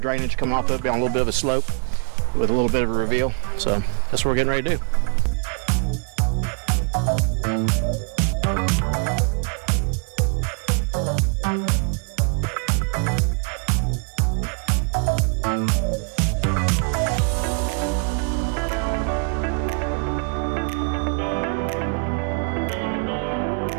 coming off of it, be on a little bit of a slope with a little bit of a reveal. So that's what we're getting ready to do.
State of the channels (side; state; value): left; quieter; 38.1 dB